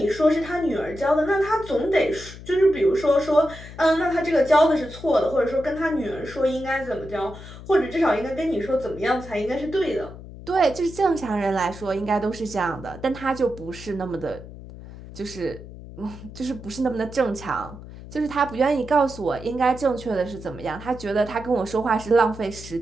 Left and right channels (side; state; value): left; noise; hum, 15 dB below the sound